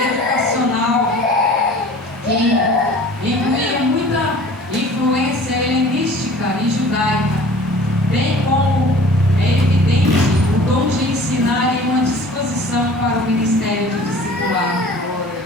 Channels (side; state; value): both; normal; correlation 0.46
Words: que incluía muita influência helenística e judaica, bem como é evidente o dom de ensinar e uma disposição para o ministério de discipular.